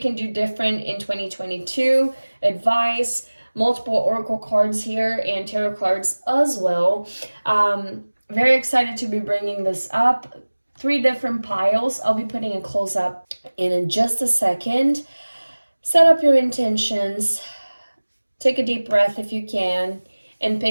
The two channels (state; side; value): inverted; both; correlation -1.00